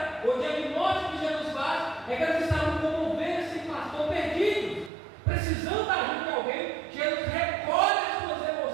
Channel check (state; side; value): drops out; left; at 4.9 s